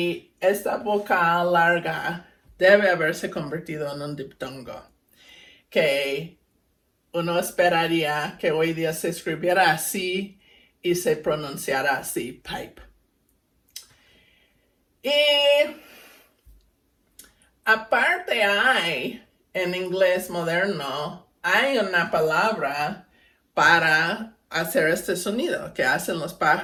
esta vocal larga debe haberse convertido en un diptongo, que uno esperaría que hoy día se escribiera así y se pronunciara así, pipe. Y aparte hay, en inglés moderno, hay una palabra para hacer este sonido que hacen los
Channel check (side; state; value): both; identical; correlation 1.00